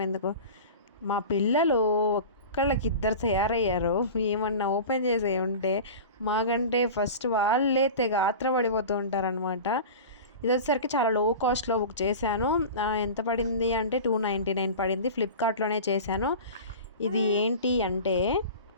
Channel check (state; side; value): inverted; both; correlation -0.34